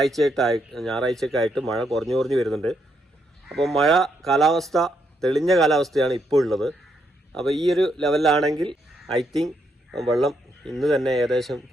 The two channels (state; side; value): normal; both; correlation 0.77